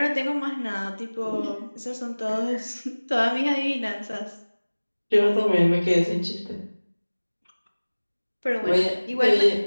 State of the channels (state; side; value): inverted; both; correlation -1.00